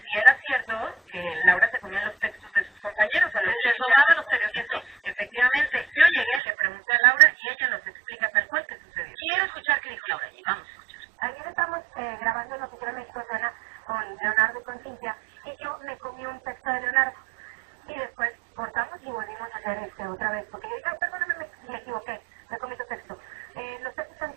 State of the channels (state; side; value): drops out; left; at 6.4 s